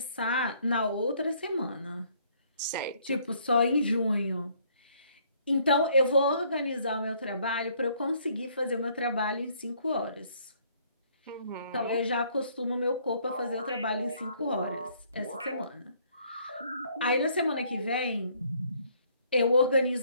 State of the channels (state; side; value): inverted; both; correlation -0.64